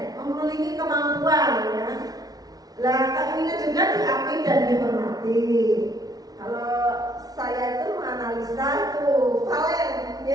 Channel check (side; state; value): left; late; 0.18 ms